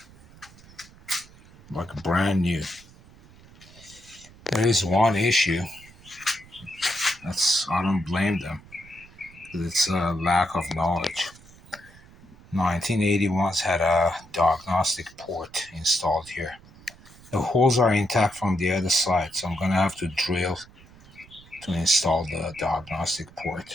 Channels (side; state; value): right; noise; rumble, 23 dB below the sound